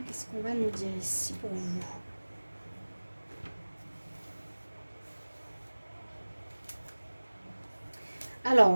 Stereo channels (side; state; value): both; inverted; correlation -1.00